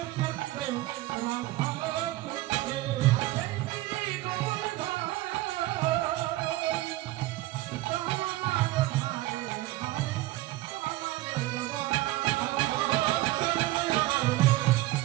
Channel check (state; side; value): quieter; left; 17.4 dB